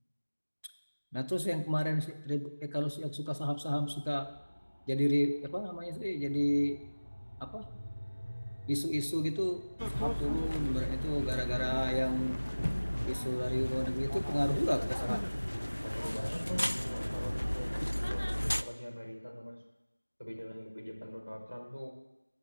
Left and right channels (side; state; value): both; inverted; correlation -1.00